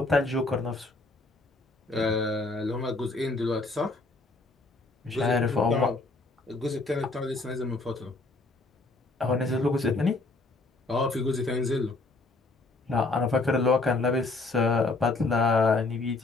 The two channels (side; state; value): right; quieter; 3.3 dB